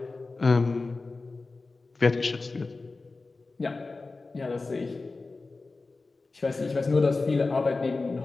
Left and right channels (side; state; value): right; quieter; 3.6 dB